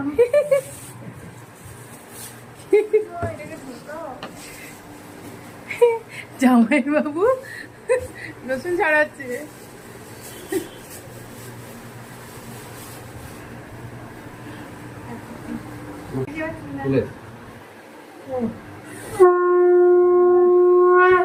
জামাই বাবু রসুন ছড়াচ্ছে।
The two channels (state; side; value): identical; both; correlation 1.00